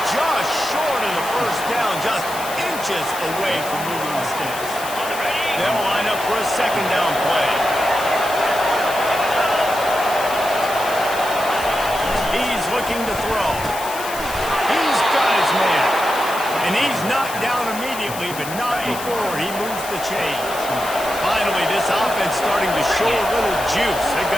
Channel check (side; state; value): left; noise; hiss, 11 dB below the sound